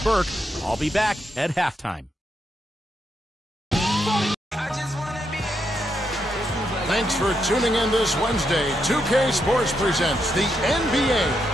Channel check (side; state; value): both; normal; correlation 0.81